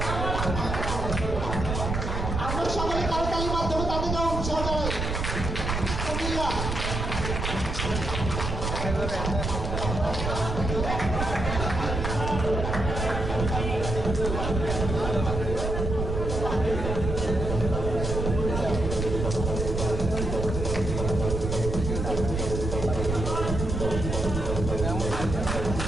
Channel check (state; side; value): noise; right; rumble, 3 dB below the sound